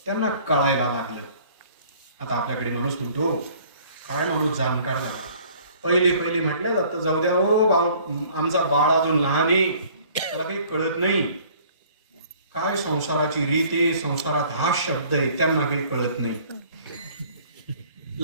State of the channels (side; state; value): both; inverted; correlation -0.54